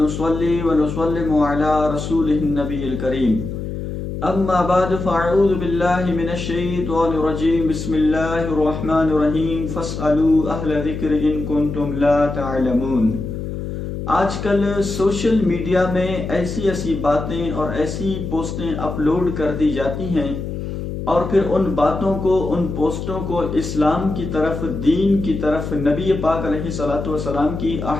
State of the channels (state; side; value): noise; left; hum, 6 dB below the sound